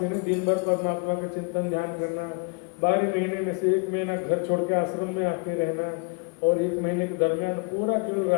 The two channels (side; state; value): right; quieter; 34.7 dB